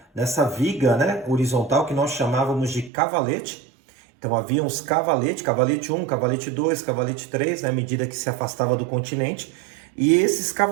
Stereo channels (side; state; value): left; drops out; at 2.9 s